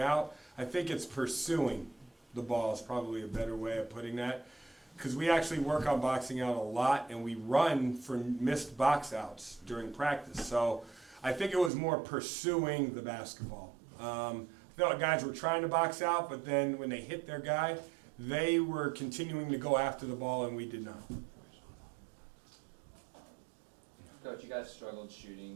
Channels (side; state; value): left; drops out; at 11.7 s